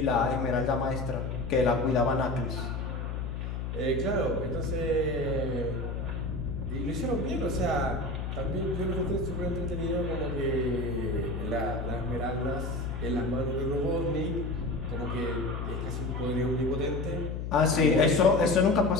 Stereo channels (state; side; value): noise; left; hum, 4 dB below the sound